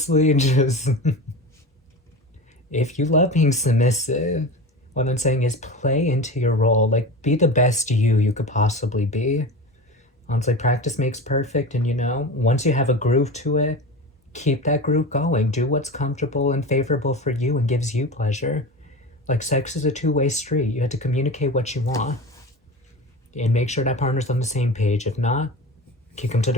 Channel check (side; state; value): both; normal; correlation 0.29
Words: just if you love being submissive, what I'm saying is play into your role. Like, be the best you could possibly be. Honestly, practice makes perfect. And, once you have a groove to it, keep that groove going. Do what's comfortable and favorable for you and gives you pleasure. Like, sex is a two-way street. You have to communicate what you want. And make sure that partner's on the same page. If not, kick them to